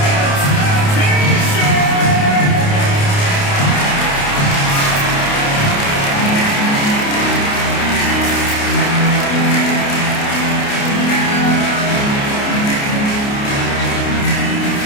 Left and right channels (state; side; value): late; right; 29 ms